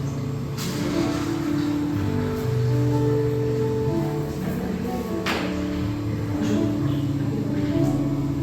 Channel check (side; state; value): both; identical; correlation 1.00